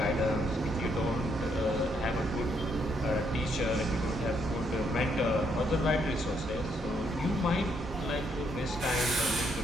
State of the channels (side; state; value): both; normal; correlation 0.73